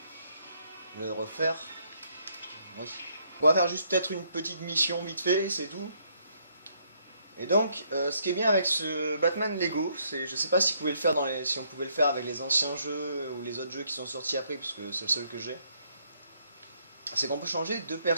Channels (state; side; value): inverted; both; correlation -0.70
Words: le refaire. Oui. On va faire juste peut-être une petite mission vite fait, c'est tout. Et donc, ce qui est bien avec ce Batman Lego, c'est, je sais pas si, si on pouvait le faire avec les anciens jeux ou les autres jeux qui sont sortis après, parce que c'est le seul que j'ai. C'est qu'on peut changer de